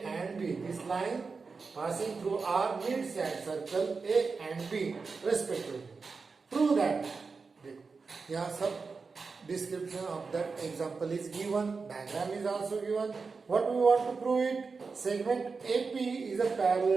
and B. This line passing through R meets at circle A and B respectively. Prove that. यहाँ सब description of that example is given. Diagram is also given. What we want to prove it? Segment AP is a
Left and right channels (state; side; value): quieter; left; 4.7 dB